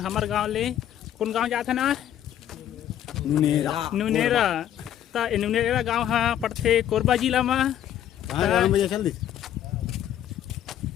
गांव ले। कौन गांव जाथन आज? नुनेरा। तो नुनेरा गांव हाँ पड़थे कोरबा जिला में।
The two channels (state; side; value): quieter; right; 11.0 dB